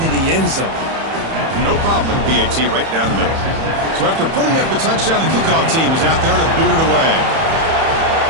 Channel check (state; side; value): late; left; 31 ms